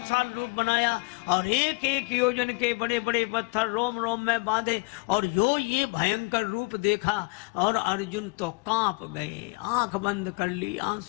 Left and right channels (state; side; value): quieter; right; 29.8 dB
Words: रूप बनाया और एक एक योजन के बड़े बड़े पत्थर रोम रोम में बांधे। और ये भयंकर रूप देखा और अर्जुन तो कांप गए, आंख बंद कर ली,